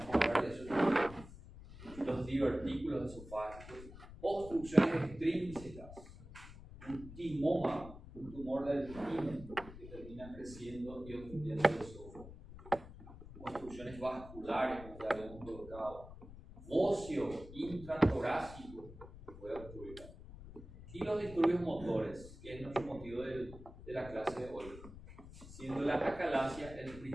a hablar de eso también. Los divertículos esofágicos, obstrucciones extrínsecas, un timoma, un tumor del timo que termina creciendo y obstruyendo el esófago, obstrucciones vasculares, como ya habíamos colocado, óseo intratorácico puede ocurrir, y los disturbios motores, que es nuestro motivo de la clase de hoy, siendo la acalasia el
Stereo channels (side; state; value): left; noise; rumble, 15 dB below the sound